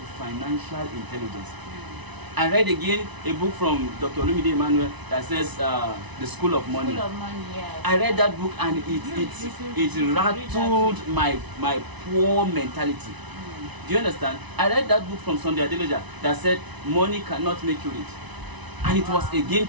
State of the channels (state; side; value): late; left; 1.0 ms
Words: financial intelligence. I read again a book from Dr. Olumide Emmanuel that says The School of Money. School of Money, yes. I read that book and it rattled my poor mentality. Do you understand? I read that book from Sunday Adeloja that said money cannot make you rich, and it was a game